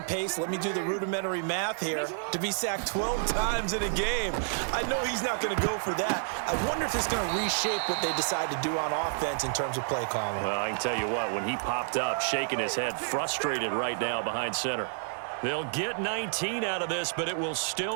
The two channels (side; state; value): left; silent; digital silence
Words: pace. Let me do the rudimentary math here. To be sacked 12 times in a game. I know he's not going to go for that. I wonder if it's going to reshape what they decide to do on offense in terms of play calling. Well, I can tell you what, when he popped up, shaking his head, frustrated right now behind center. They'll get 19 out of this, but it will